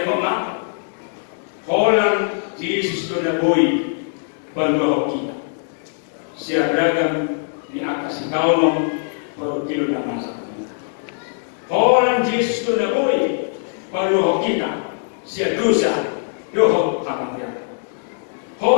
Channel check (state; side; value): silent; right; digital silence